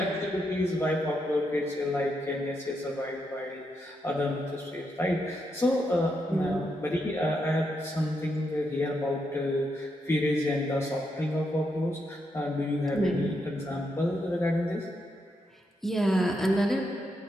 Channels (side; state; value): both; normal; correlation 0.81